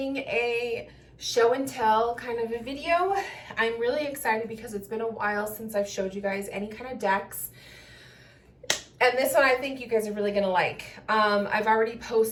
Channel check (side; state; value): both; identical; correlation 1.00